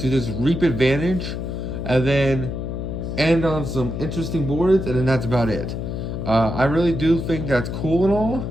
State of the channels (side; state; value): left; noise; hum, 4 dB below the sound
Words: just reap advantage and then end on some interesting boards, and then that's about it. I really do think that's cool and all,